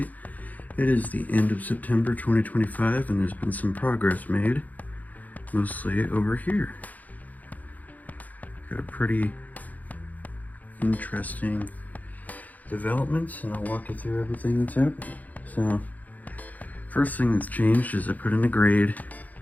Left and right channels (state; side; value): late; right; 0.079 ms